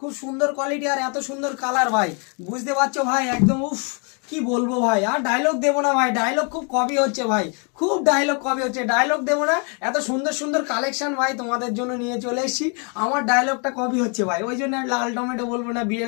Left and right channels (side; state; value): right; quieter; 36.8 dB